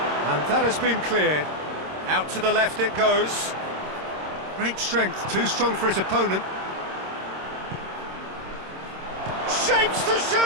And that has been cleared. Out to the left it goes. Great strength, too strong for his opponent. Shapes to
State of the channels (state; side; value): late; left; 26 ms